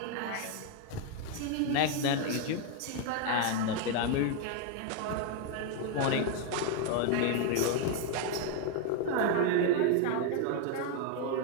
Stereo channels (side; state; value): both; different; correlation 0.01